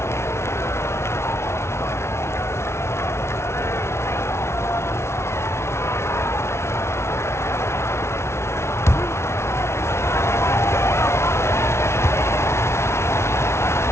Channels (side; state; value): right; late; 0.13 ms